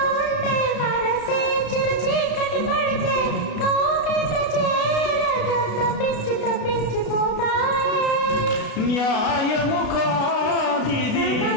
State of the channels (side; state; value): right; late; 33 ms